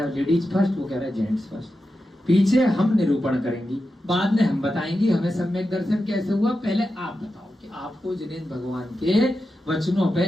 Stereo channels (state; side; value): normal; both; correlation 0.90